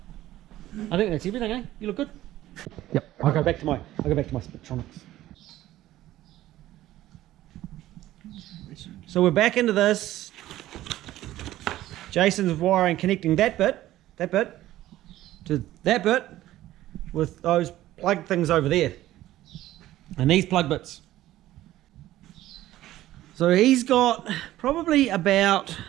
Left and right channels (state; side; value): quieter; left; 14.7 dB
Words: I think that's everything, eh? You look good? Yep. I'll go back to my Spectronics. So we're back into this. Jason's wiring, connecting that bit to that bit with those plug things over there. And these plug bits. So he's got probably about